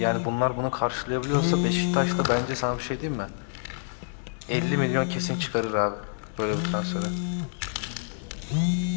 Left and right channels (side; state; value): right; silent; 60 dB below the other